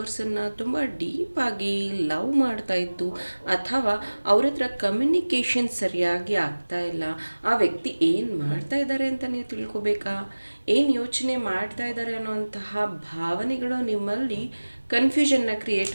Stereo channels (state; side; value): inverted; both; correlation -1.00